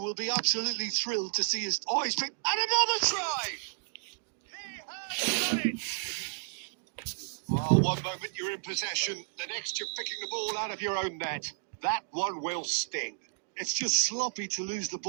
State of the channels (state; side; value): silent; left; digital silence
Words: be absolutely thrilled to see his... Oh, he's picked... And another try! He has done it! Well, one moment you're in possession, the next you're picking the ball out of your own net. That one will sting. It's just sloppy to lose the